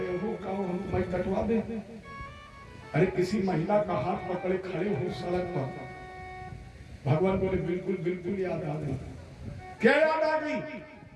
हो, कहो हम मैं कटवा दे। अरे किसी महिला का हाथ पकड़े खड़े हो सड़क पर। भगवान बोले बिल्कुल बिल्कुल याद आ गई। क्या याद आ गई?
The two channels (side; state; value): both; identical; correlation 1.00